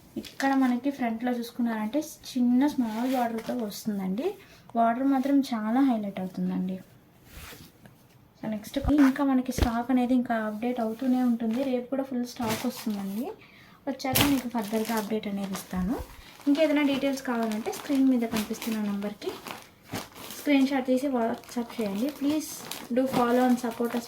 ఇక్కడ మనకి ఫ్రంట్లో చూసుకున్నారంటే చిన్న స్మాల్ బార్డర్తో వస్తుందండి. బార్డర్ మాత్రం చాలా హైలైట్ అవుతుందండి. సో నెక్స్ట్ ఇంకా మనకి స్టాక్ అనేది ఇంకా అప్డేట్ అవుతూనే ఉంటుంది. రేపు కూడా ఫుల్ స్టాక్ వస్తుందండి. వచ్చాక మీకు ఫర్దర్గా అప్డేట్ అనేది ఇస్తాను. ఇంకేదైనా డీటెయిల్స్ కావాలంటే స్క్రీన్ మీద కనిపిస్తున్న నెంబర్కి స్క్రీన్ షాట్ తీసి వాట్సాప్ చేయండి. Please do follow and support us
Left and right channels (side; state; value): both; identical; correlation 1.00